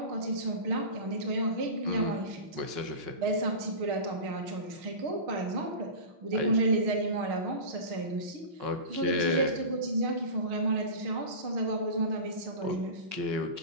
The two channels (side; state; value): left; late; 5.5 ms